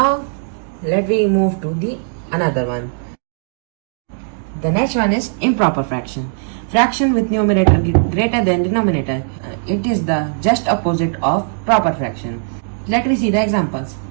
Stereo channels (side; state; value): left; silent; digital silence